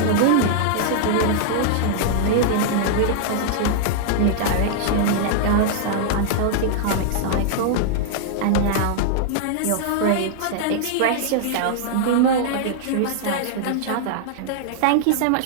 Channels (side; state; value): both; different; correlation -0.01